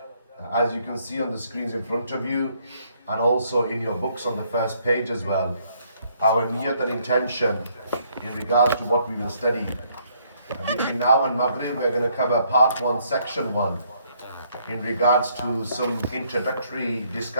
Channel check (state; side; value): inverted; both; correlation -0.68